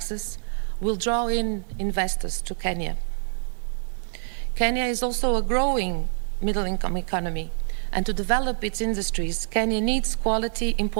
will draw in investors to Kenya. Kenya is also a growing middle-income economy, and to develop its industries, Kenya needs quality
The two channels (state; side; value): silent; left; digital silence